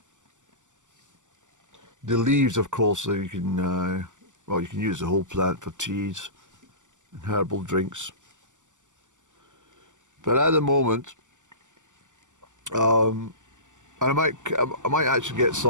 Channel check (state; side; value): late; left; 0.86 ms